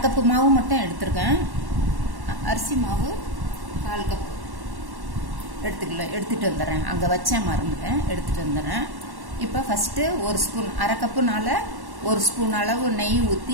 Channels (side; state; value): left; late; 1.1 ms